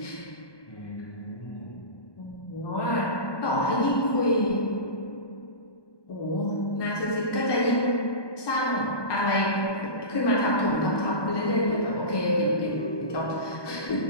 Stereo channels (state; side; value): late; right; 1.2 ms